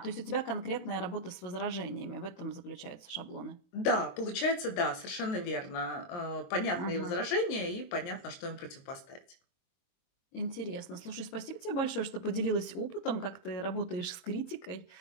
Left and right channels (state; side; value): late; right; 23 ms